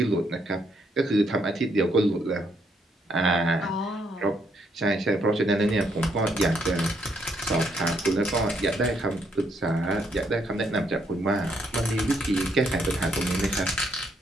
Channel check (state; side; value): normal; both; correlation 0.73